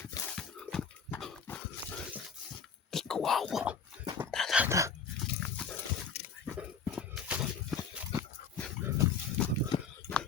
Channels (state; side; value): quieter; right; 5.7 dB